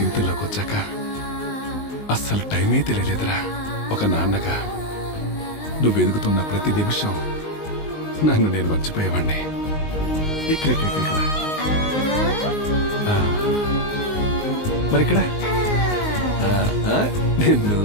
వచ్చాక అస్సలు టైమే తెలియలేదురా. ఒక నాన్నగా నువ్వు ఎదుగుతున్న ప్రతి నిమిషం నన్ను నేను మర్చిపోయేవాణ్ణి. ఇక్కడ మరిక్కడ నిన్ను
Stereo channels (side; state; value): right; late; 19 ms